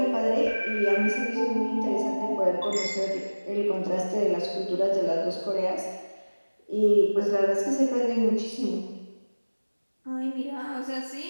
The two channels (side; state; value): both; inverted; correlation -1.00